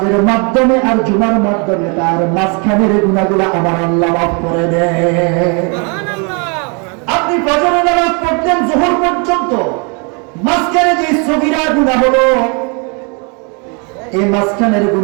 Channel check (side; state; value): left; quieter; 34.5 dB